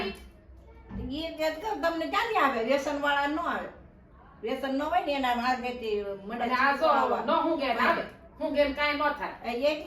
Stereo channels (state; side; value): identical; both; correlation 1.00